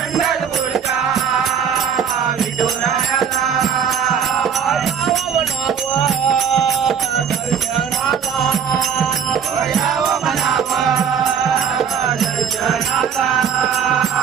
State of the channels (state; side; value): quieter; left; 7.5 dB